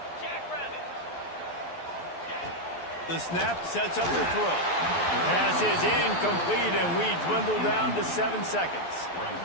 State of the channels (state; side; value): late; right; 12 ms